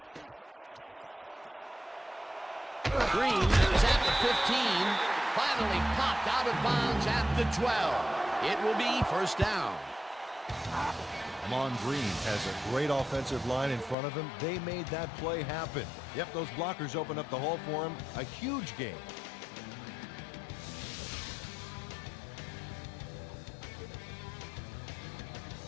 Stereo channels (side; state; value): right; drops out; at 14.0 s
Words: Green is at the 15, finally popped out of bounds at the 12. It will be first down. Ahman Green has a great offensive line in front of him. They made that play happen. Yep, those blockers opened up the hole for him. A huge game.